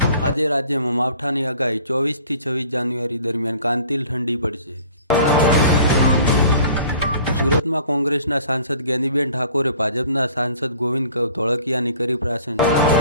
આજે રાજ્યમાં માવઠાની આગાહી 24 થી 26 જાન્યુઆરી દરમિયાન કાંતિલ ઠંડી પડશે। સુરતમાં કોંગ્રેસના સાંસદ જ્ઞાનીબેન ઠાકોરે ભાજપના સાંસદ ગોવિંદ ધોળકિયાની કરી પ્રશંસા।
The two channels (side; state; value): both; inverted; correlation -0.50